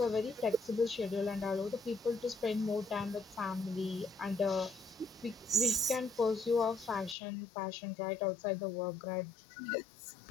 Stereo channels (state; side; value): drops out; right; at 7.2 s